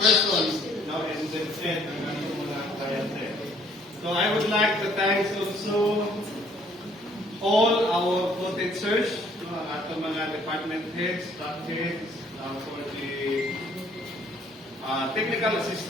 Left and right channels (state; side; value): normal; both; correlation 0.61